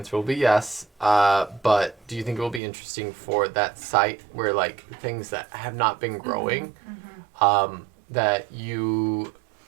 will be yes. But do you think it will be interesting for that site where like things that have not been growing, that you,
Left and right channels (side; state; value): left; drops out; at 2.6 s